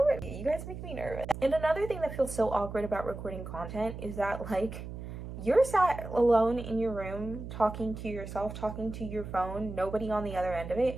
bit, you guys make me nervous. And another thing that feels so awkward about recording content is that, like, you're sat alone in your room talking to yourself, talking to your phone, nobody on the other end of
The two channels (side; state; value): right; noise; hum, 9 dB below the sound